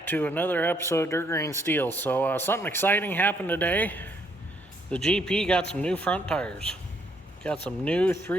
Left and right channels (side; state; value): both; normal; correlation 0.70